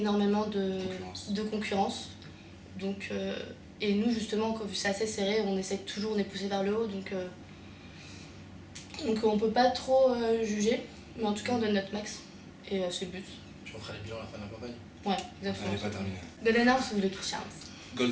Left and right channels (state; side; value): identical; both; correlation 1.00